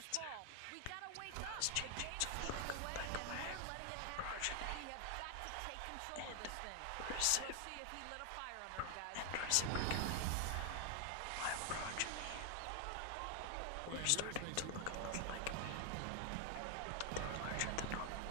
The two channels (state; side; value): different; both; correlation 0.00